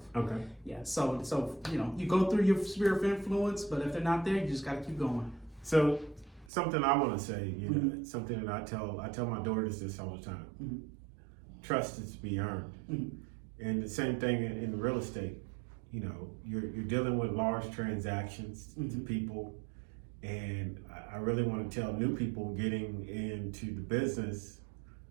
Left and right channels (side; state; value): left; drops out; at 6.5 s